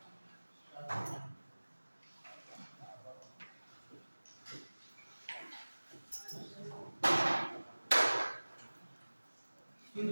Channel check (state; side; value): inverted; both; correlation -1.00